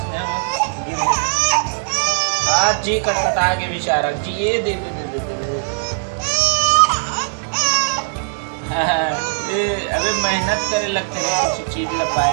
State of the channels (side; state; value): left; silent; digital silence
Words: में गिर गए आज जी कटकटा के बेचारा जी। ये दे दे दे दे दे, दे। अबे मेहनत करे लगते रहे कुछ चीज ला